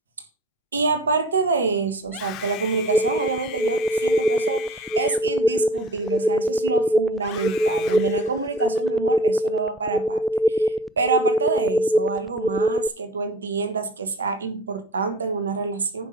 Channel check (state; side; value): normal; both; correlation 0.41